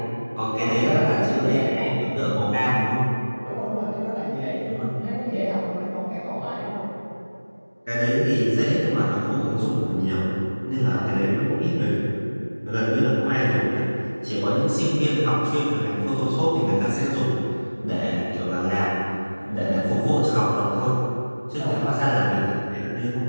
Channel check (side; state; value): both; inverted; correlation -1.00